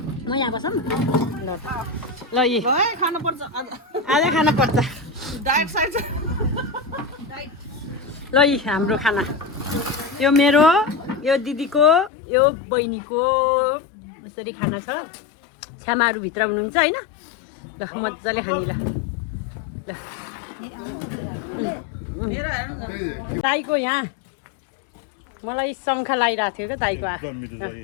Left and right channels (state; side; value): drops out; right; at 12.1 s